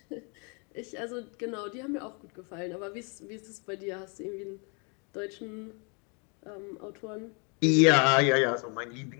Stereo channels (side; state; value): right; quieter; 35.0 dB